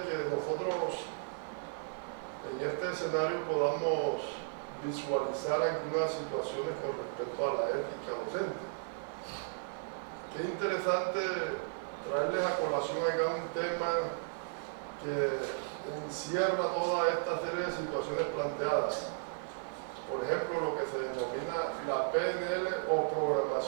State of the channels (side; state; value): left; silent; 55 dB below the other